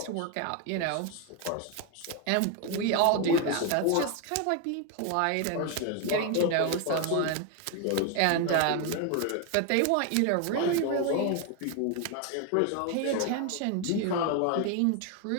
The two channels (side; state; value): both; different; correlation 0.01